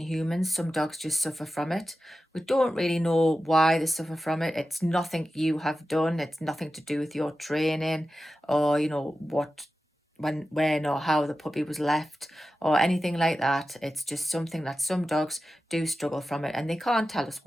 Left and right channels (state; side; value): normal; both; correlation 0.93